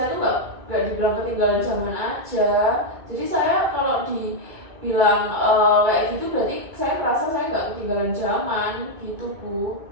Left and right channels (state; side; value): late; left; 2.3 ms